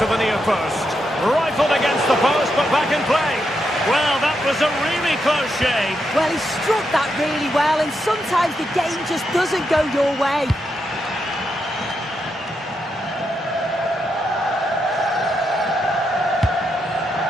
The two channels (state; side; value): normal; both; correlation 0.83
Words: the near post. Rifled against the post, but back in play. Well, that was a really close shave. Well, he struck that really well, and sometimes the game just doesn't go your way.